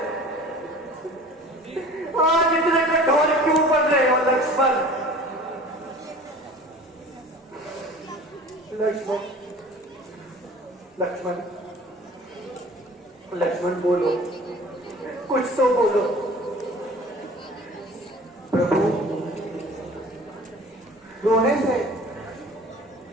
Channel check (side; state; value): both; normal; correlation 0.44